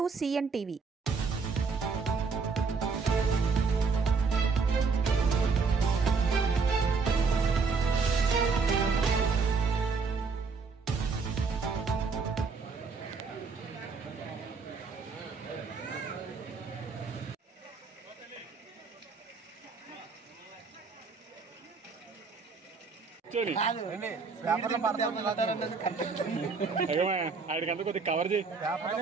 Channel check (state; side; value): quieter; left; 4.7 dB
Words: CN TV. ఆడికంతా కొద్దిగా cover చేయి.